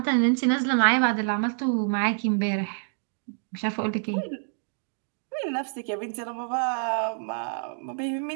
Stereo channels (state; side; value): silent; left; digital silence